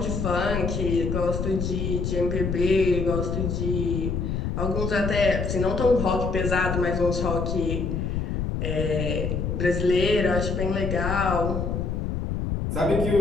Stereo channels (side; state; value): left; noise; rumble, 1 dB below the sound